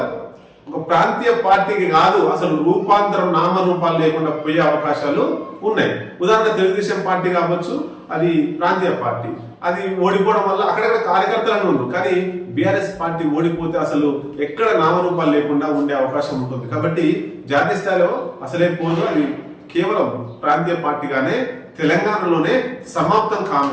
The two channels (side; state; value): both; identical; correlation 1.00